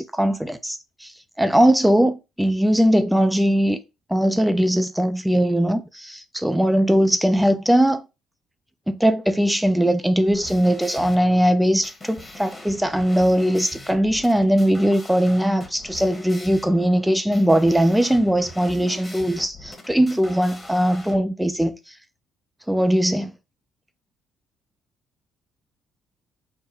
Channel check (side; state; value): both; normal; correlation 0.97